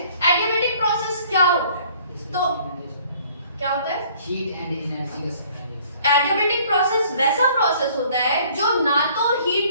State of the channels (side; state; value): both; inverted; correlation -0.57